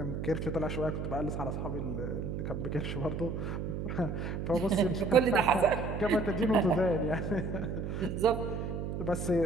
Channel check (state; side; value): noise; right; hum, 4 dB below the sound